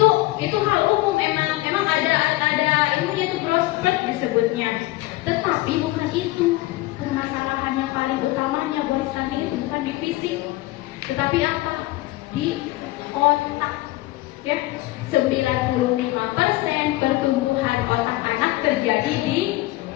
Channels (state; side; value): quieter; right; 18.8 dB